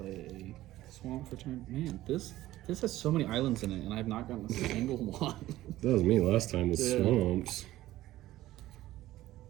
Swamp for turn. Man, this has so many islands in it, and I've not gotten a single one. That was me last time with Yeah. swamps.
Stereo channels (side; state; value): left; quieter; 15.4 dB